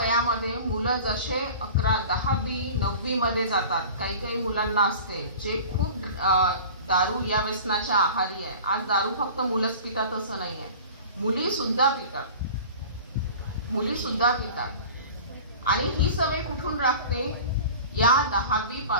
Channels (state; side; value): inverted; both; correlation -0.40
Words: मुलं जसे 11, 10वी, 9वी मध्ये जातात, काही काही मुलांना असते जे खूप दारू या व्यसनाच्या आहारी आहे. आज दारू फक्त मुलंच पितात असं नाही आहे, मुली सुद्धा पितात. आणि ही सवय कुठून लागते, या 10वी